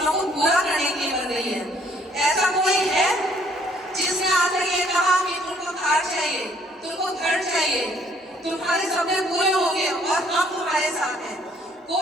को पूरा करने के लिए बन रही है। ऐसा कोई है जिसने आकर ये कहा कि तुमको कार चाहिए, तुमको घर चाहिए, तुम्हारे सपने पूरे होंगे और हम तुम्हारे साथ हैं?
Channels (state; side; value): normal; both; correlation 0.63